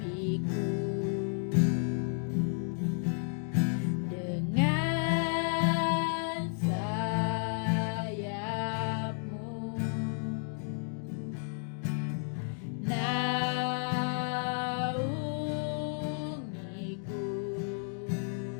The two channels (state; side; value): silent; right; 56 dB below the other